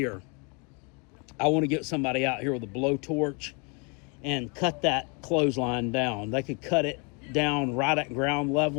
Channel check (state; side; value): quieter; right; 33.7 dB